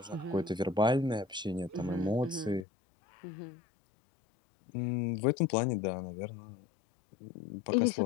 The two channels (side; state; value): right; drops out; at 2.7 s